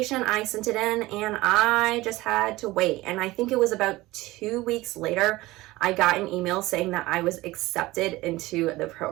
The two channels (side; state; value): left; quieter; 19.2 dB